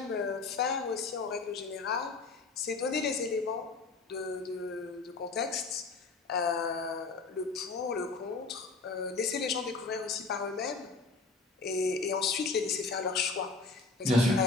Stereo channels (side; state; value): right; quieter; 3.9 dB